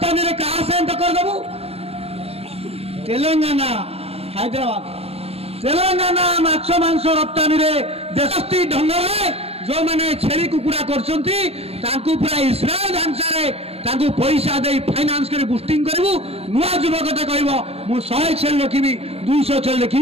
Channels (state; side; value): late; left; 0.29 ms